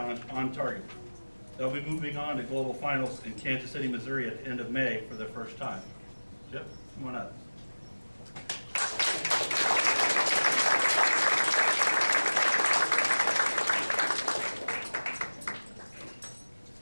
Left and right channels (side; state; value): both; inverted; correlation -1.00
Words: on target. They'll be moving on to global finals in Kansas City, Missouri at the end of May for their first time. Chip, come on up.